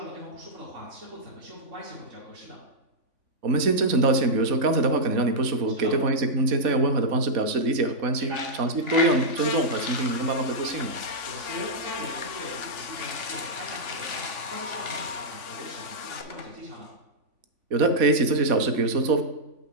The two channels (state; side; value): late; left; 3.5 ms